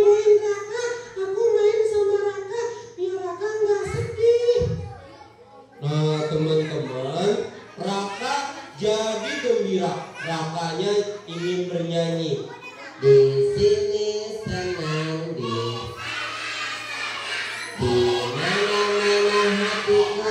Raka. Aku main sama ingin bernyanyi. Di sini senang, di mana-mana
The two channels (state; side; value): identical; both; correlation 1.00